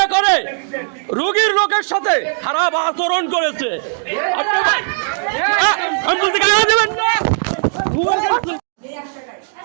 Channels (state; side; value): silent; left; 68 dB below the other